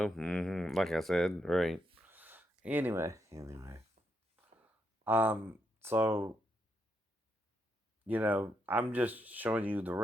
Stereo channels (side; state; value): both; normal; correlation 0.80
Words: Like I said, right. Anyway. So, I'm just showing you the